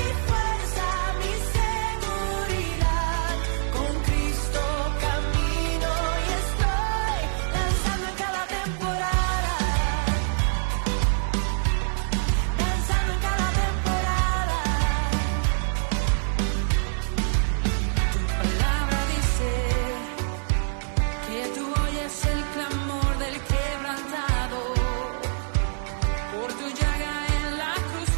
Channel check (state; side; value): silent; left; digital silence